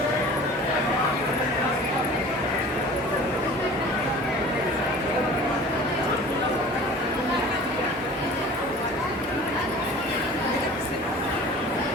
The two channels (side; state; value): both; normal; correlation 0.43